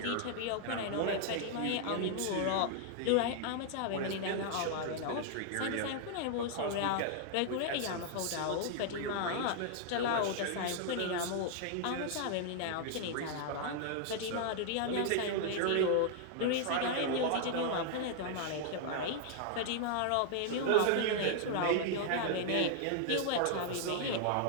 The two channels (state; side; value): different; both; correlation 0.00